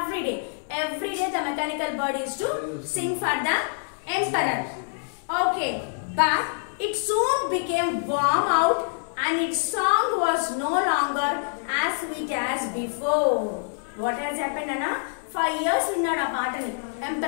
day. Every day the mechanical bird used to sing for the emperor. Okay, but it soon became warm out and its song was no longer as sweet as before. What has happened, Anna? 5 years విన్నాడు ఆ పాటని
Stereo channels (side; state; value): right; silent; 61 dB below the other